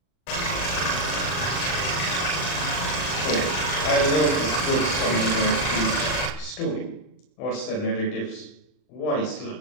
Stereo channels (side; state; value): right; late; 39 ms